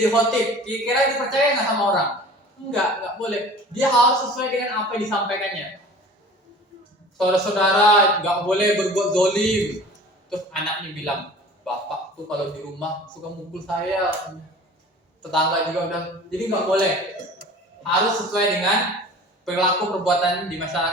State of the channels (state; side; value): normal; both; correlation 0.43